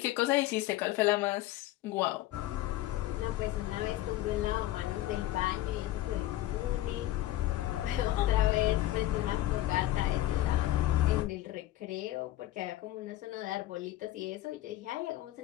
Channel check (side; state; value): right; quieter; 15.3 dB